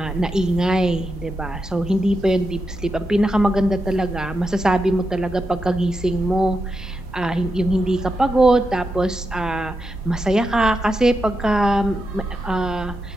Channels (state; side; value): normal; both; correlation 0.86